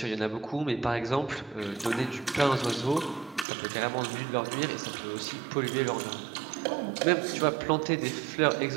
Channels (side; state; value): left; drops out; at 3.5 s